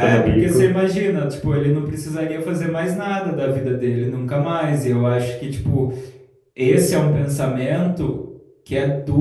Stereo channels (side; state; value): both; identical; correlation 1.00